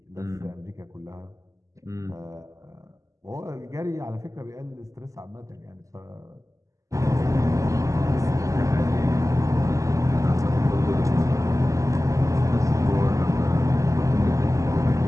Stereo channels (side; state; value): left; late; 0.16 ms